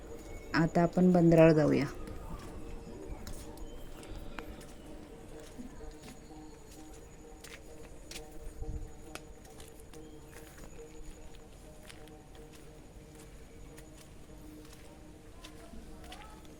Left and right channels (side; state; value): both; identical; correlation 1.00